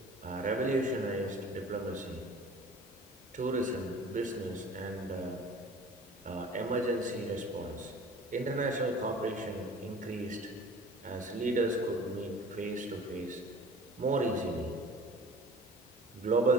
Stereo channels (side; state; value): both; normal; correlation 0.44